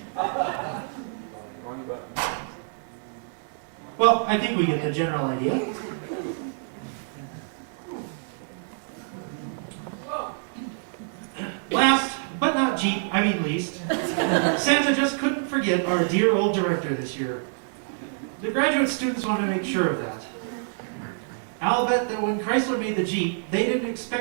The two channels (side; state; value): left; silent; digital silence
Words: Well, I think we get the general idea. Last, but not least, Santa just couldn't forget our dear old director this year. The graduate students want to make sure of that. I'll bet that when Chrysler made the Jeep, they didn't